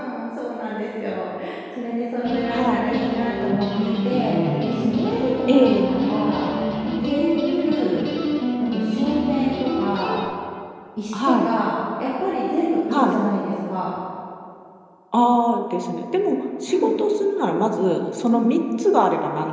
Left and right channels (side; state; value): both; identical; correlation 1.00